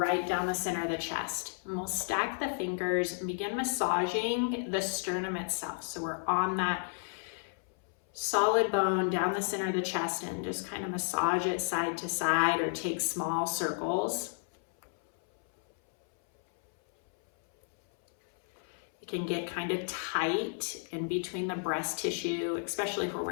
down the center of the chest. And we'll stack the fingers and begin massaging the sternum itself. So we're on that solid bone down the center of the chest and just kind of massage it side to side or take small circles. It can get kind of tight in between the breast tissue, especially if we're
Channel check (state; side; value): silent; right; 56 dB below the other